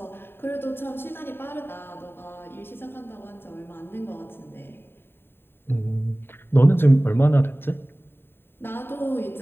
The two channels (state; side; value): late; right; 0.11 ms